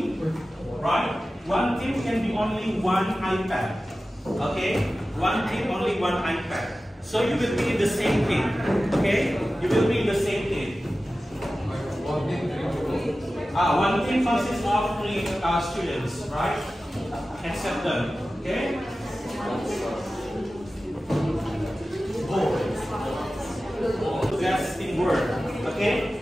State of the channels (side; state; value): both; normal; correlation 0.95